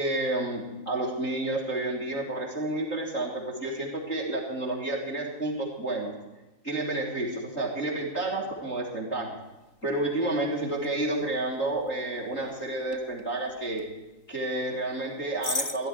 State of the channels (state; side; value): late; right; 3.8 ms